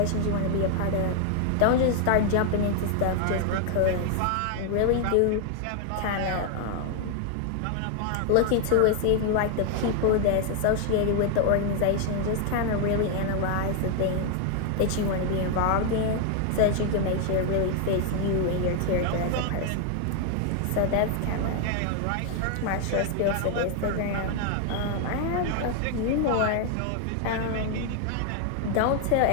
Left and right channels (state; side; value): different; both; correlation 0.00